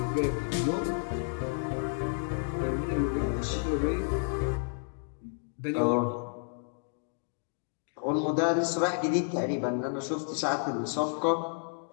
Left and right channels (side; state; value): right; silent; digital silence